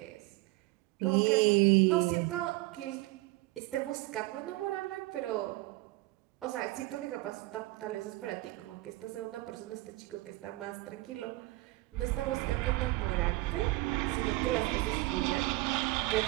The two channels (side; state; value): left; quieter; 20.1 dB